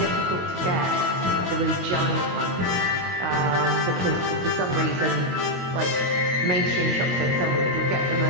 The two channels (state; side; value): late; left; 22 ms